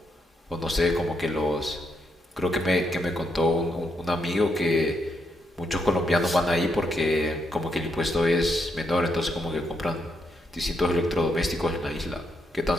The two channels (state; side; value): normal; both; correlation 0.79